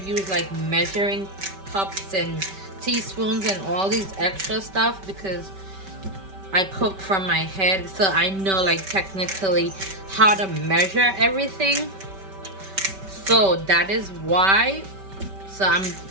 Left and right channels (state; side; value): late; left; 5.2 ms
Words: like measuring cups and teaspoons and all these extra stuff, because I cook from my head, so I know like technically how to measure everything. So that is why, so I'm